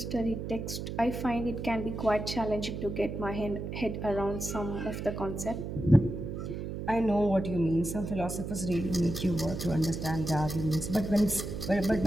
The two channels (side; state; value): right; noise; hum, 6 dB below the sound